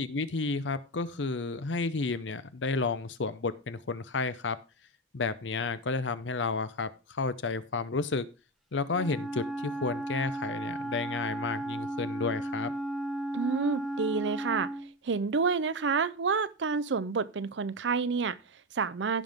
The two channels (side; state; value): both; normal; correlation 0.16